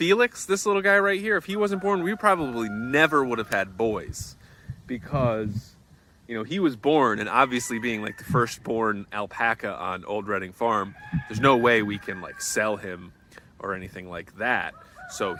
this little guy right here, if he wasn't born, we probably never would have had boys, because, you know, he was born, and obviously being like the firstborn alpaca on Old Reading Farm, there's no way we can like sell him or anything like that. So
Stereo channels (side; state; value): both; identical; correlation 1.00